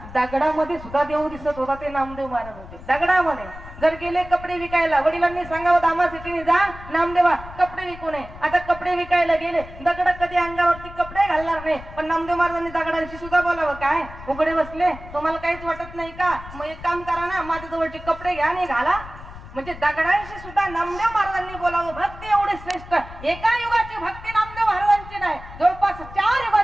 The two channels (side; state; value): left; noise; rumble, 15 dB below the sound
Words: दगडामध्ये सुद्धा देव दिसत होता ते नामदेव महाराज होते. दगडामध्ये जर गेले कपडे विकायला, वडिलांनी सांगावं दामासिटीने जा नामदेवा कपडे विकू नये. आता कपडे विकायला गेले, दगड कधी अंगावरती कपडे घालणार नाही, पण नामदेव महाराजांनी दगडांशी सुद्धा बोलावं. काय उघडे बसले, तुम्हाला काहीच वाटत नाही का? मग एक काम करा ना, माझ्या जवळचे कपडे घ्या आणि घाला. म्हणजे दगडांशी सुद्धा नामदेव महाराजांनी बोलावं. भक्ती एवढी श्रेष्ठ. एका युगाची भक्ती नामदेव महाराजांची नाही, जवळपास 4